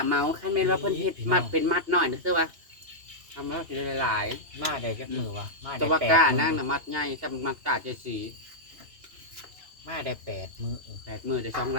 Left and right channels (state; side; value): late; left; 2.8 ms